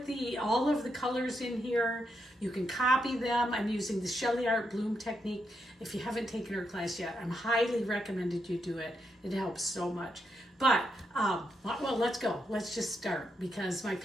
all of the colors in here. You can copy them. I'm using the SheleeArt bloom technique. If you haven't taken her class yet, I'm highly recommended you do it. It helps so much. But, well, let's go. Let's just start because my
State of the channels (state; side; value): normal; both; correlation 0.82